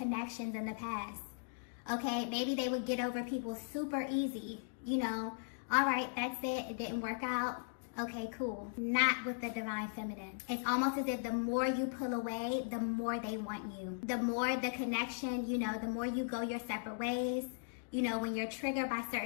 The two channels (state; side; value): silent; right; digital silence